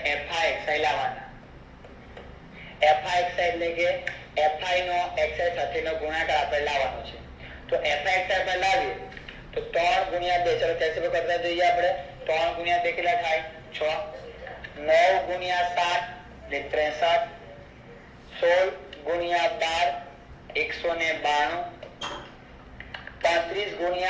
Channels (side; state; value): both; identical; correlation 1.00